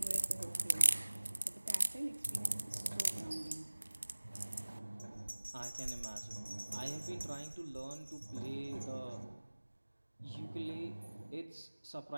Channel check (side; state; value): both; inverted; correlation -1.00